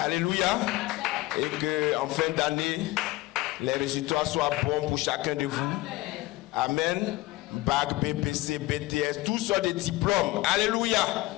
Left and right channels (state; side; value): quieter; right; 19.1 dB